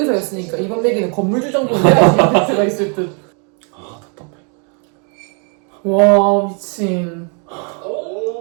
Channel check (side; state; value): left; quieter; 38.4 dB